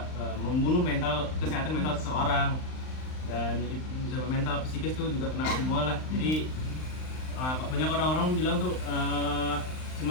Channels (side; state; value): right; late; 39 ms